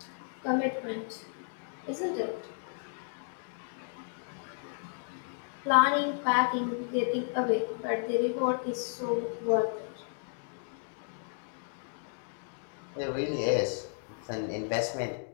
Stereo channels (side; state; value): right; silent; digital silence